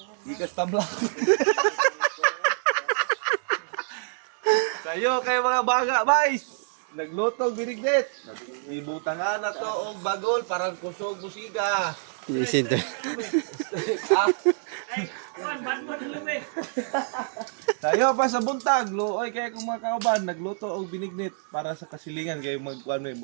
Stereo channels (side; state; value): left; silent; digital silence